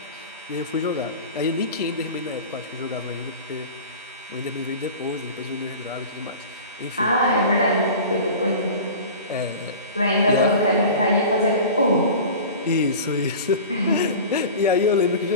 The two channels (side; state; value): both; inverted; correlation -0.36